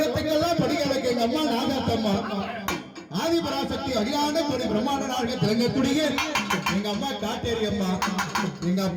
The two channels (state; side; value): identical; both; correlation 1.00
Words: படிகளுக்கு எங்க அம்மா நாகாத்தம்மா ஆதிபராசக்தி அகிலாண்ட கொடி பிரம்மாண்ட நாயகி திலங்கக்கூடிய எங்க அம்மா காட்டேரி அம்மா. எங்க